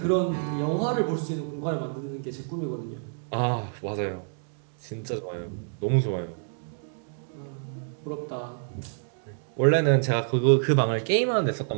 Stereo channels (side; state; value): left; silent; digital silence